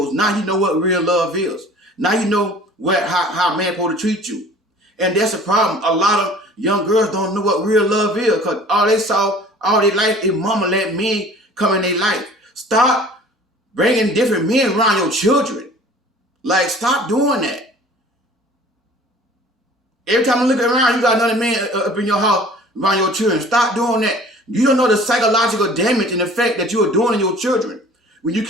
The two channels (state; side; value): normal; both; correlation 0.47